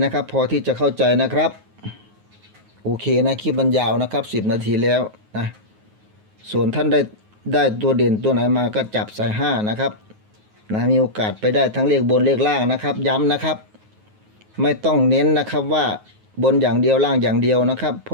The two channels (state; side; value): late; left; 9.4 ms